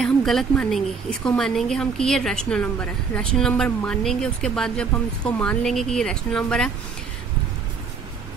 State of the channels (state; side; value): quieter; left; 5.3 dB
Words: हम गलत मानेंगे, इसको मानेंगे हम कि ये रैशनल नंबर है। रैशनल नंबर मानेंगे, उसके बाद जब हम इसको मान लेंगे कि ये रैशनल नंबर है,